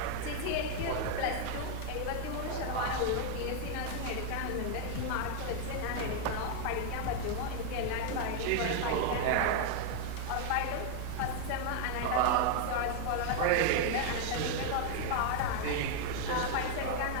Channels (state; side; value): different; both; correlation 0.00